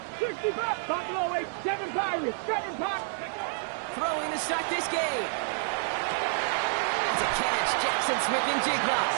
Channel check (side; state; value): left; silent; 59 dB below the other